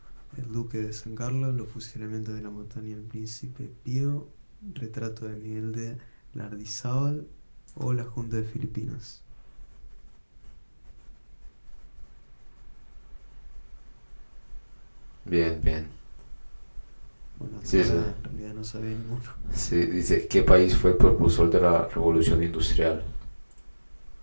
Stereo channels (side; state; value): both; inverted; correlation -1.00